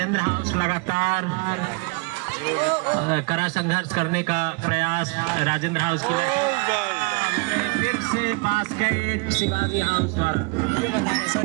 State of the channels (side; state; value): left; quieter; 29.2 dB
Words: हाउस लगातार कड़ा संघर्ष करने का प्रयास राजेंद्र हाउस की। फिर से बास्केट शिवाजी हाउस पर